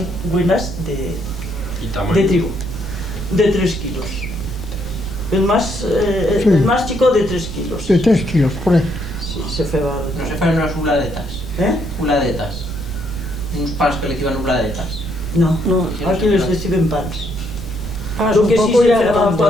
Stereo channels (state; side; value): noise; right; rumble, 9 dB below the sound